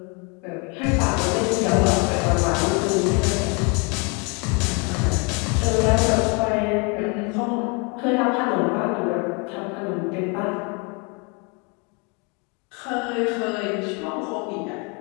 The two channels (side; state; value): right; quieter; 32.7 dB